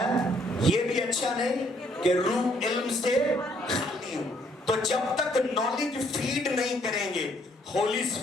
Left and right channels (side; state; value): both; normal; correlation 0.67